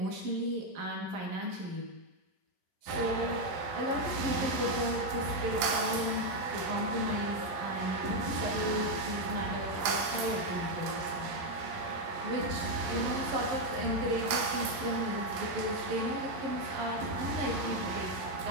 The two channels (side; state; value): left; late; 11 ms